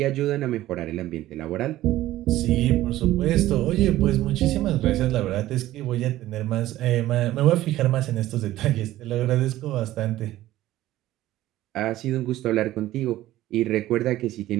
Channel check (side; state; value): left; quieter; 15.1 dB